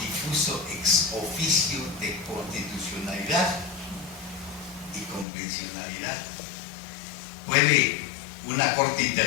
ex oficio de constitucionalidad y convencionalidad. Puede una Corte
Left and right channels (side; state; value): right; drops out; at 5.2 s